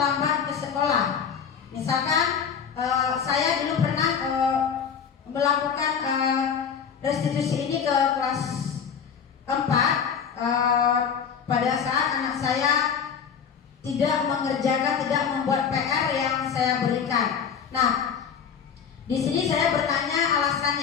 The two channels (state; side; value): quieter; right; 7.1 dB